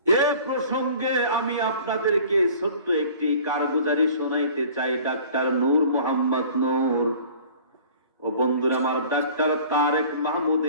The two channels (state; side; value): inverted; both; correlation -0.47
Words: এ প্রসঙ্গে আমি আপনাদেরকে ছোট্ট একটি কারগুজারি শোনাইতে চাই। ডাক্তার নূর মোহাম্মদ নূর ও বন্ধুরা আমার, doctor Tarek Mahmud